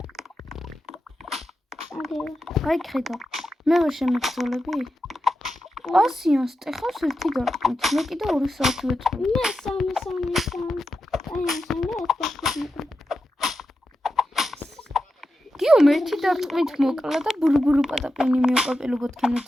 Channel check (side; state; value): both; normal; correlation 0.89